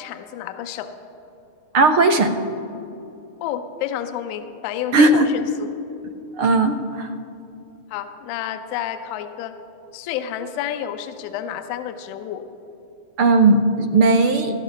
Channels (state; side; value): late; left; 6.6 ms